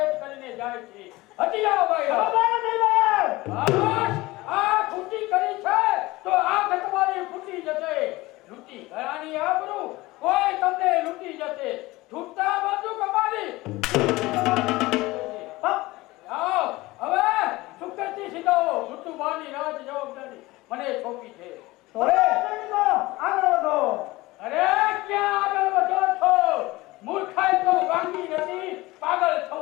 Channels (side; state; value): right; quieter; 20.1 dB